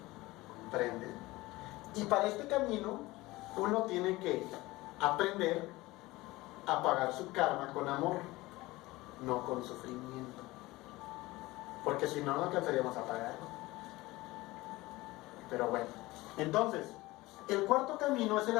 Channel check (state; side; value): quieter; right; 19.9 dB